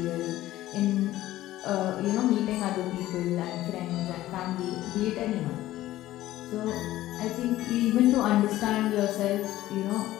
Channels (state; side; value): quieter; right; 15.1 dB